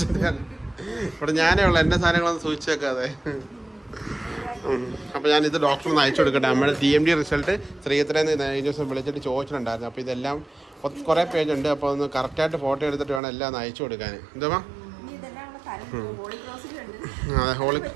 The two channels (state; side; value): drops out; left; at 13.2 s